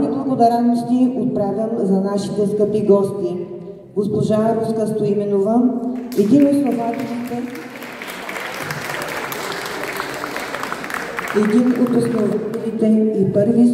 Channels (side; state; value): both; identical; correlation 1.00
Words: благодарности отправям за нашите скъпи гости. Госпожа Руска Стоименова, един от основателите и първи